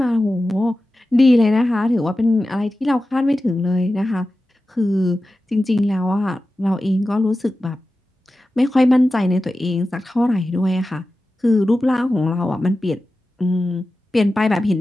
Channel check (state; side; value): normal; both; correlation 0.94